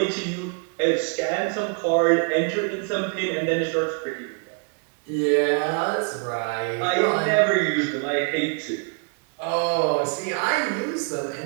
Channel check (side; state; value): left; quieter; 37.4 dB